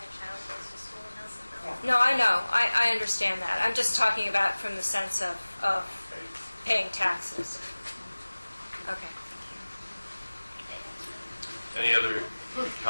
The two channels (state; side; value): inverted; both; correlation -1.00